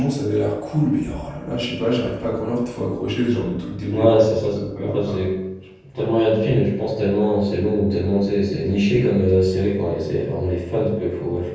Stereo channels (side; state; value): both; identical; correlation 1.00